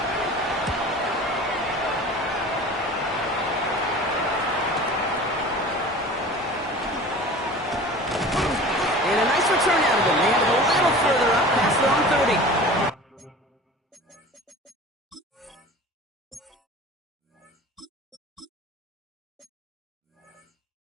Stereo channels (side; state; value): both; normal; correlation 0.39